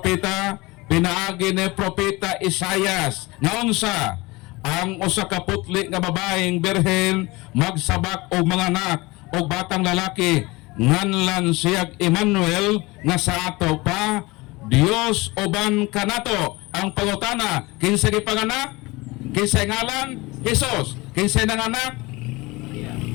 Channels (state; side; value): quieter; right; 22.8 dB